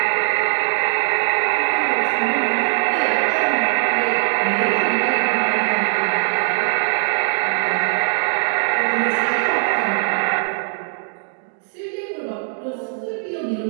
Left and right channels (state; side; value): silent; left; digital silence